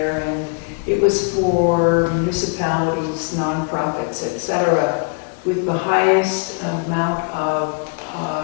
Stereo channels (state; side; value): quieter; right; 33.5 dB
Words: and it was for municipalities, nonprofits, etc., with the highest amount of